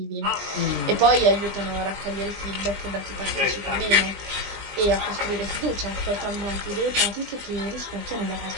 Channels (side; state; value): left; late; 20 ms